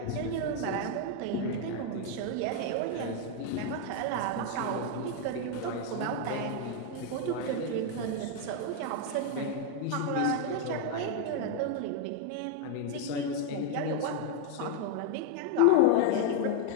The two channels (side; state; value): both; different; correlation 0.01